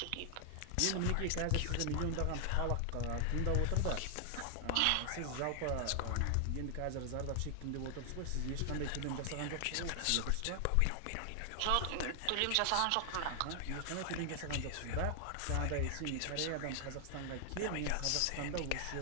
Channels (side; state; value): both; different; correlation 0.00